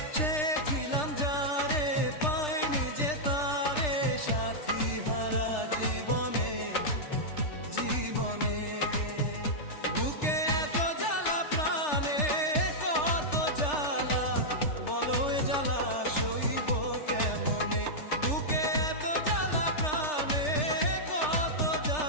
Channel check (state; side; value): late; right; 3.3 ms